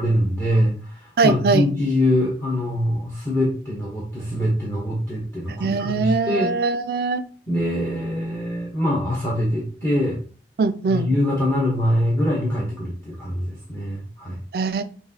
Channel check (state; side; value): normal; both; correlation 0.64